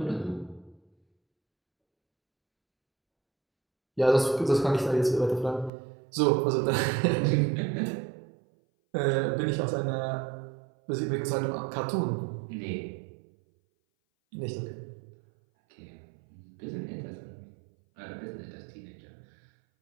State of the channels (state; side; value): drops out; left; at 5.7 s